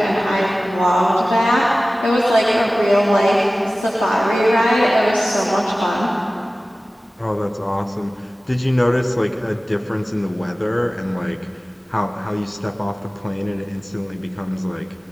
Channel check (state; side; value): normal; both; correlation 0.97